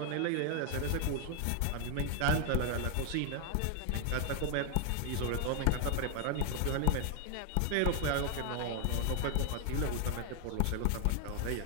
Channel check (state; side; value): different; both; correlation 0.00